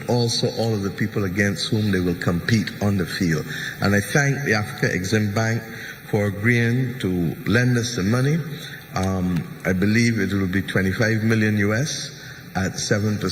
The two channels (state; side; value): identical; both; correlation 1.00